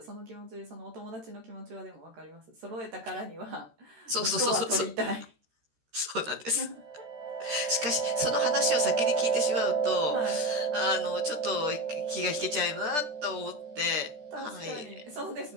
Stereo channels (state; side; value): late; left; 13 ms